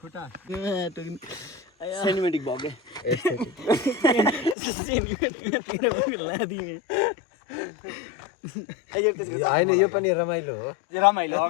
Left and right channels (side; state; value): right; drops out; at 4.5 s